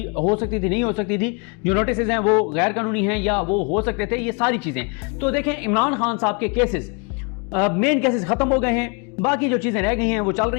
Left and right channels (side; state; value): right; quieter; 33.6 dB